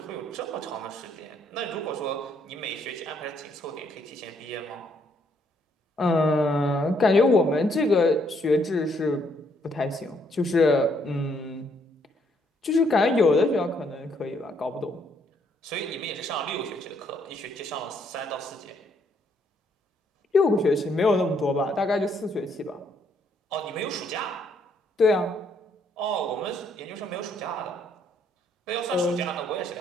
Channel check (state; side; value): normal; both; correlation 0.70